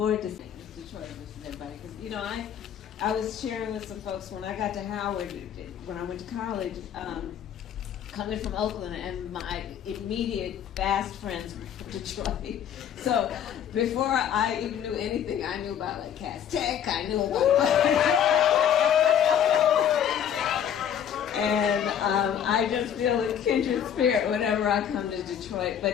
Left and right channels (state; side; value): quieter; right; 9.2 dB